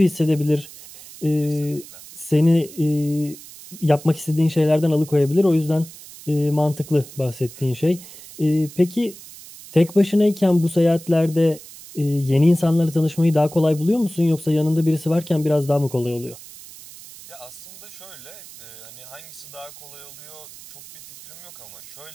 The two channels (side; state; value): right; noise; hiss, 18 dB below the sound